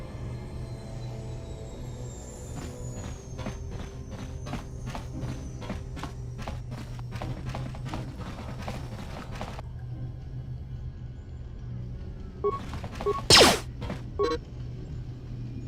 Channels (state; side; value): identical; both; correlation 1.00